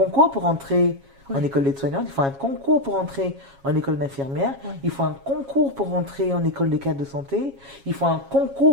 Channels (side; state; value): left; late; 7.3 ms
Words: pour entrer en Ouais. école d'aide-soignante, il faut un concours pour entrer en école d'infirmière, Ouais. il faut un concours pour entrer en école de cadre de santé, il faut un